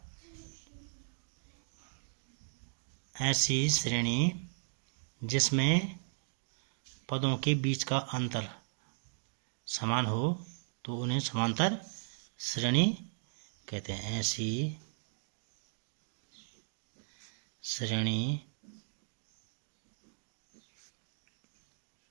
ऐसी श्रेणी जिसमें पदों के बीच का अंतर समान हो तो उन्हें समांतर श्रेणी कहते हैं। ऐसी श्रेणी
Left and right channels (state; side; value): silent; left; digital silence